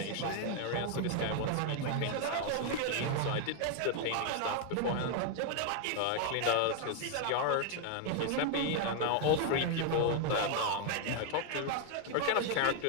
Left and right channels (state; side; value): different; both; correlation 0.00